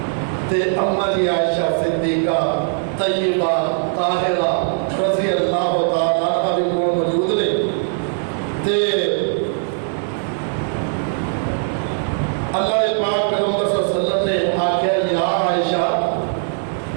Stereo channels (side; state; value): left; silent; 56 dB below the other